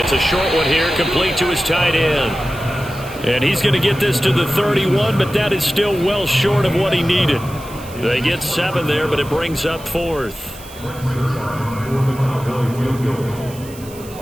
a short one here, complete to his tight end. And he's going to get this to the 31, but that is still well short of what he needed. They get 7 there, but it brings up 4th.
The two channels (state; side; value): noise; right; hiss, 19 dB below the sound